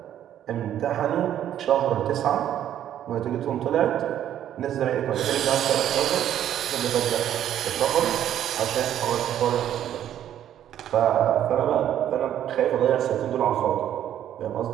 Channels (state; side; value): quieter; left; 10.9 dB